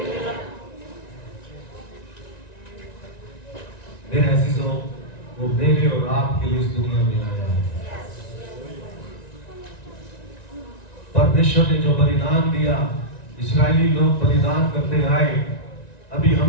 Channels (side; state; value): right; late; 1.9 ms